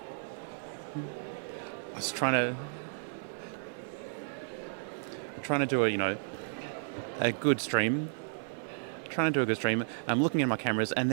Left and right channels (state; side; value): silent; left; 56 dB below the other